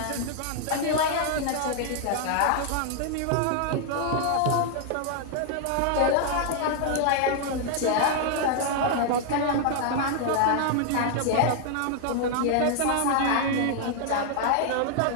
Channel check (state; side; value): different; both; correlation 0.00